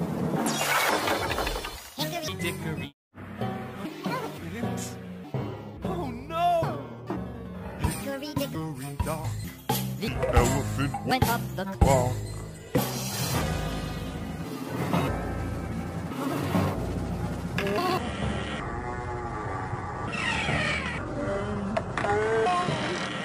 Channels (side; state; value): both; identical; correlation 1.00